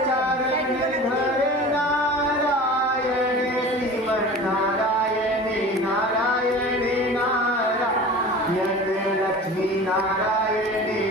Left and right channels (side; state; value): both; normal; correlation 0.38